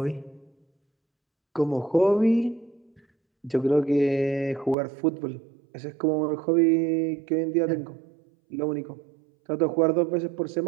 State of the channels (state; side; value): drops out; left; at 4.8 s